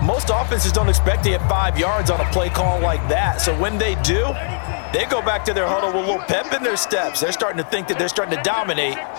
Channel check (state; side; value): silent; right; digital silence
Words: most offenses don't expect to get 5 yards on a play call like that. So when they do, they go back to their huddle with a little pep in their steps. They're starting to think that they're starting to dominate